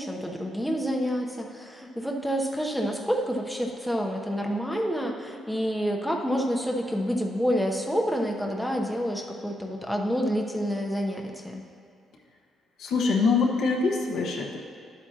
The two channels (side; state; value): both; normal; correlation 0.81